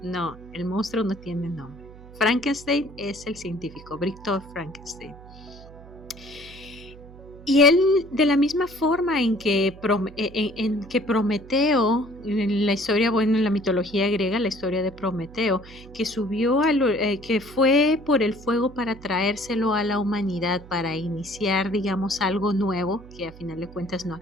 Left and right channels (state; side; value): noise; right; hum, 19 dB below the sound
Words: No, el monstruo no tiene nombre. Frankenstein es el científico, Victor Frankenstein. Y él, de la misma forma en que Prometeo, en la historia, bueno, en la mitología griega, la historia de Prometeo, que que fue por el fuego para traérselo a la humanidad, para iniciar, digamos, algo nuevo, que a final de cuentas no